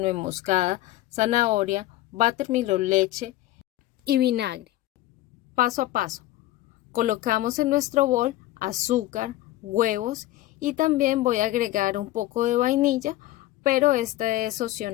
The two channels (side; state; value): right; quieter; 15.9 dB